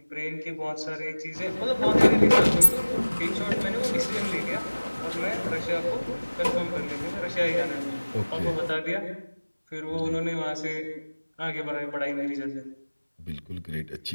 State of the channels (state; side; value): inverted; both; correlation -1.00